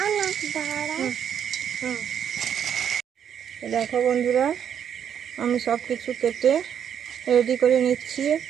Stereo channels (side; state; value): left; quieter; 8.7 dB